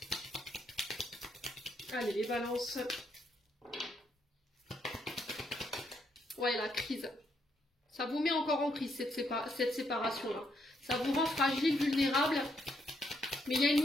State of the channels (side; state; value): both; normal; correlation 0.75